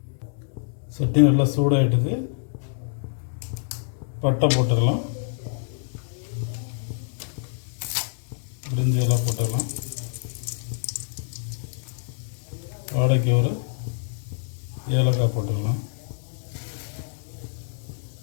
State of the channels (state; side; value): silent; right; digital silence